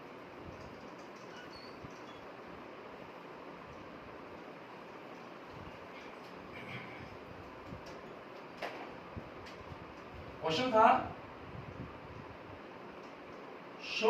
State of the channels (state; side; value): identical; both; correlation 1.00